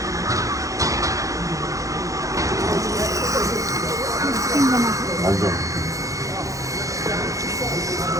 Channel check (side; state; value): left; late; 0.16 ms